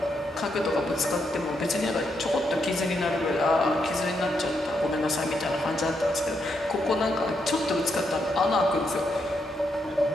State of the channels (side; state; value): both; normal; correlation 0.80